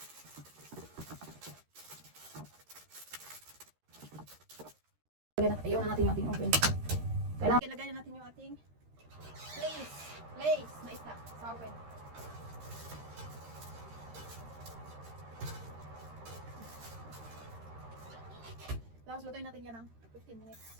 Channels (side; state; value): left; late; 13 ms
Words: Ayaw na natin yung ating oven. Kailangan ilagay na natin yung ating place na isda sa oven. Tapos lutuin natin yan ng 15 minutes.